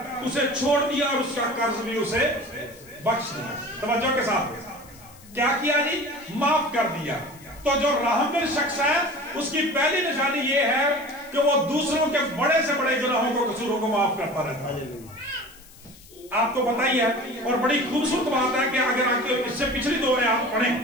اسے چھوڑ دیا اور اس کا قرض بھی اسے بخش دیا۔ توجہ کے ساتھ کیا کیا جی؟ معاف کر دیا۔ تو جو رحم دل شخص ہے اس کی پہلی نشانی یہ ہے کہ وہ دوسروں کے بڑے سے بڑے گناہوں کو، قصوروں کو معاف کرتا رہتا ہے۔ آپ کو بتائی ہے، اور بڑی خوبصورت بات ہے کہ اگر آپ اس سے پچھلی 2 آیات پڑھیں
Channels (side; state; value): left; noise; hiss, 23 dB below the sound